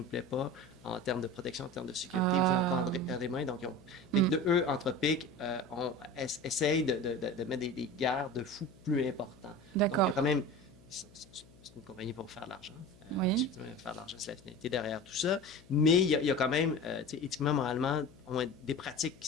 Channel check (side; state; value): left; noise; hum, 25 dB below the sound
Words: plaît pas en termes de protection, en termes de sécurité, vous avez encore des mains. Donc, eux, Anthropic, essayent de mettre des garde-fous plus importants. D'accord. Donc, il y a quand même... C'est une compagnie pour faire de l'argent. Oui. Faire de l'argent, c'est la finalité derrière tout ça. Mais il y a quand même, éthiquement, moralement, des pratiques